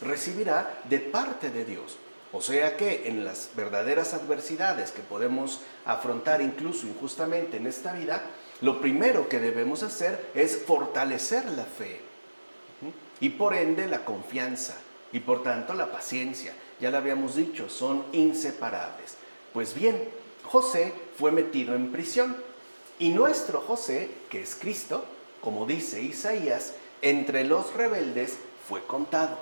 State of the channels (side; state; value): both; inverted; correlation -1.00